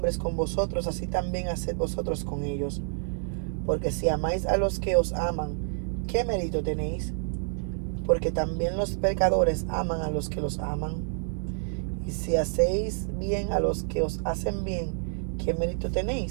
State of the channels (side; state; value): left; silent; 59 dB below the other